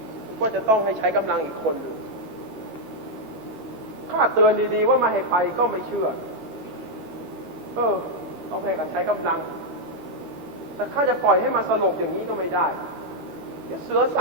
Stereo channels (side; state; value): left; late; 13 ms